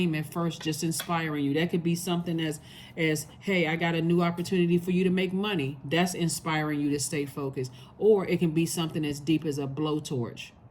at first, just inspiring you. That could be something as hey, I got a new opportunity for you to make money. That's inspiring you to stay focused. Or it can be something as deep as a blowtorch,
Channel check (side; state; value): both; identical; correlation 1.00